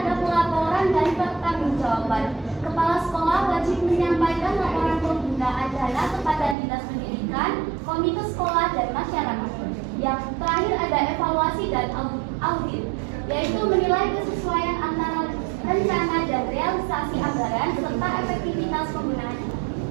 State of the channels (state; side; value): drops out; left; at 6.6 s